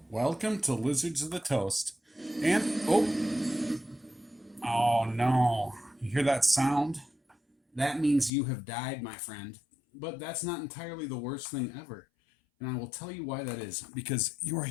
Welcome to Lizards of the Toast. And, oh no. You hear that sound? That means you have died, my friend. But that's not entirely the worst thing ever. And I will tell you why that is. Because you are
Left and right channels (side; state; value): right; drops out; at 8.3 s